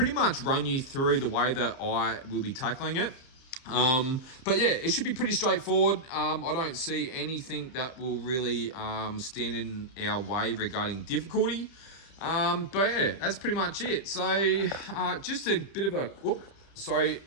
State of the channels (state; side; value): late; right; 31 ms